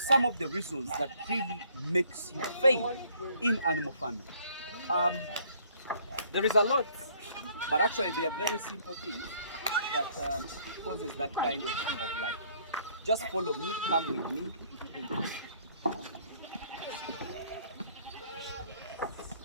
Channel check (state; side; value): inverted; both; correlation -0.62